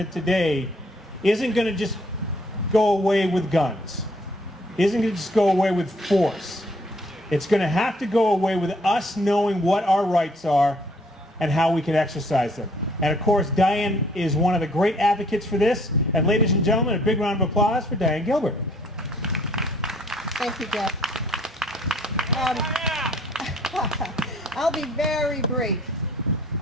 today isn't going to just go away with guns. Isn't going to just go away with force. It's going to have to go away with us knowing what our rights are and how we can exercise them. And of course, Diane is one of the great advocates for this. And ladies and gentlemen, a big round of applause for Diane Gilbert. Thank you, Jeff. I'll be very brief.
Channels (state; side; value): normal; both; correlation 0.62